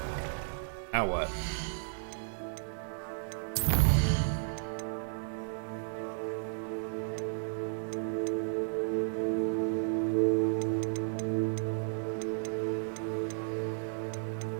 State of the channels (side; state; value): left; silent; digital silence